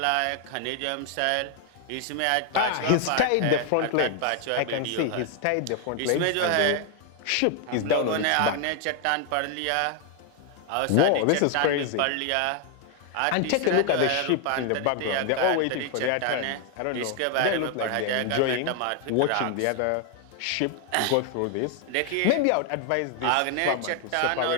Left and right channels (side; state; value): both; different; correlation 0.00